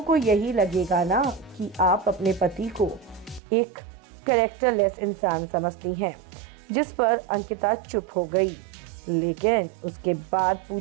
को यही लगेगा ना कि आप अपने पति को एक कैरेक्टरलेस इंसान समझती हैं। जिस पर अंकिता चुप हो गई। लेकिन उसके बाद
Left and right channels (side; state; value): left; drops out; at 3.4 s